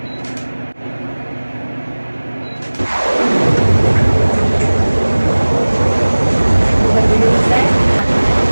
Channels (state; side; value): inverted; both; correlation -1.00